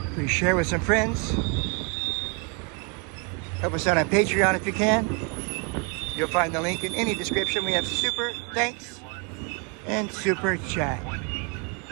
Please share with some friends. Help us out on Patreon if you can. You'll find the link in any description. We have super thanks and super chat.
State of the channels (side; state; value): left; quieter; 33.7 dB